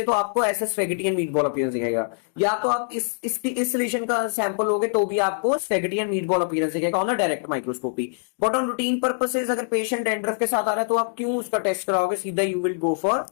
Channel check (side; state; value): right; silent; digital silence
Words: तो आपको ऐसा स्पेगेटी एंड मीटबॉल अपीयरेंस दिखेगा। या तो आप इस लीजन का सैंपल लोगे तो भी आपको स्पेगेटी एंड मीटबॉल अपीयरेंस दिखेगा on the direct microscopy. But on routine purposes, अगर पेशेंट डैंड्रफ के साथ आ रहा है तो आप क्यों उसका टेस्ट कराओगे, सीधा you will go for